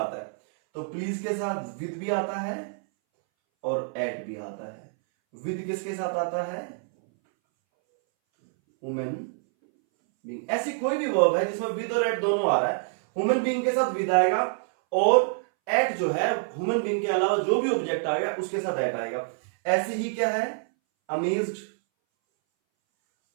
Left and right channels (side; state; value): left; silent; 60 dB below the other